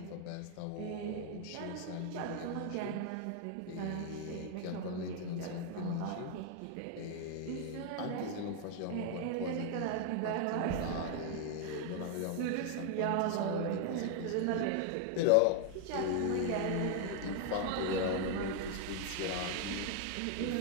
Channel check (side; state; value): both; different; correlation 0.00